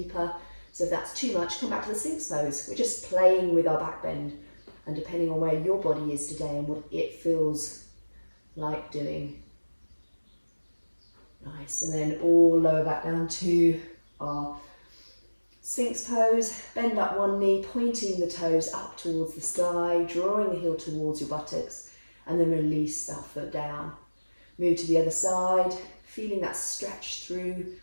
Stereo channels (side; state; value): both; inverted; correlation -1.00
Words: So if that's too much, come back to the sphinx pose. We're just playing with our back bend, and depending on where your body is today and what it feels like doing. Nice, and then all lower back down to our sphinx pose. Bend up one knee, pointing the toes up towards the sky, drawing the heel towards your buttocks, and then release that foot down. Move to the other side, feeling that stretch through